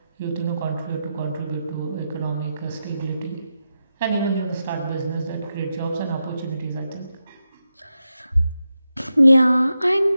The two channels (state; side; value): inverted; both; correlation -0.88